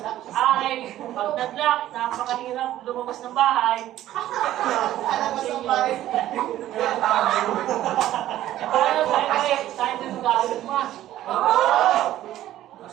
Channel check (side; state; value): left; quieter; 13.5 dB